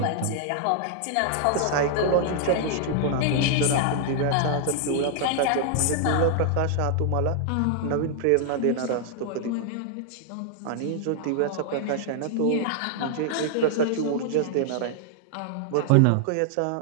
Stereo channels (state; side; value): different; both; correlation 0.00